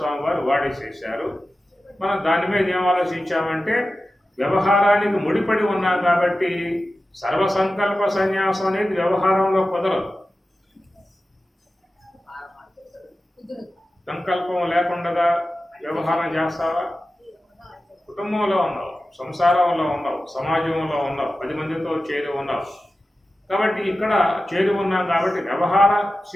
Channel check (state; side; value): normal; both; correlation 0.94